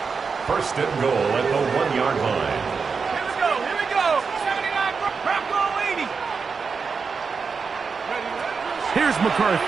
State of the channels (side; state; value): left; quieter; 5.3 dB